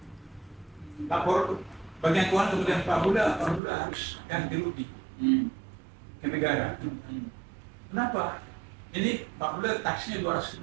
Lapor bagian keuangan kemudian Pak Buda harus ganti rugi ke negara. Kenapa? Ini Pak Buda taksinya 200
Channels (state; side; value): drops out; left; at 3.6 s